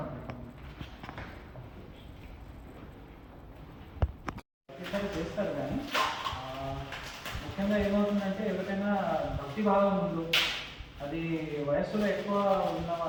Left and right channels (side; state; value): both; identical; correlation 1.00